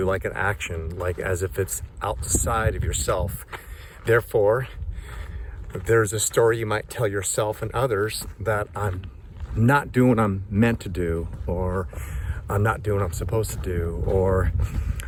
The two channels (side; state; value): both; identical; correlation 1.00